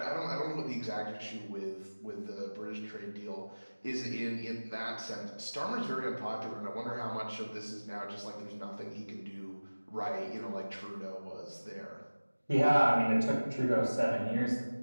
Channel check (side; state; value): both; inverted; correlation -1.00